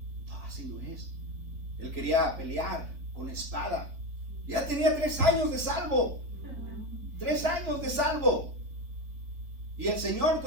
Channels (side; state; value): left; late; 3.9 ms